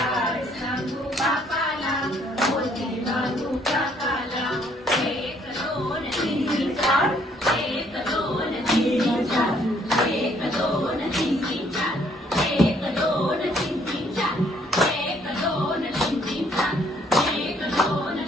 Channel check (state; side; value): normal; both; correlation 0.66